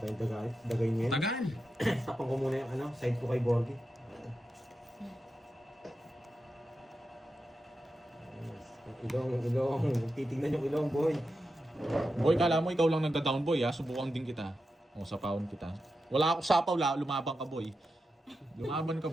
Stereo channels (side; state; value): both; normal; correlation 0.89